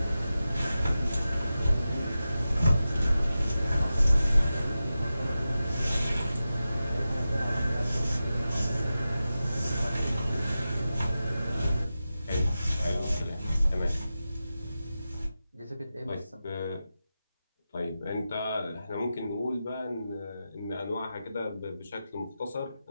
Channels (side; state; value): both; inverted; correlation -0.92